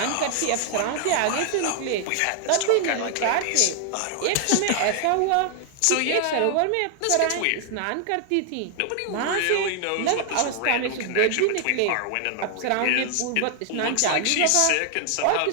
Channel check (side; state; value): both; different; correlation 0.00